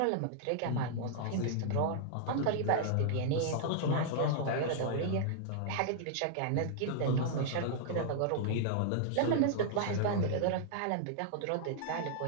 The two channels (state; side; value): different; both; correlation -0.01